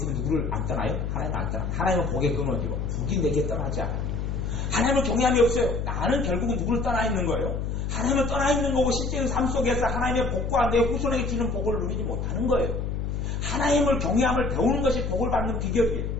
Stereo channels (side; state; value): left; noise; hum, 2 dB below the sound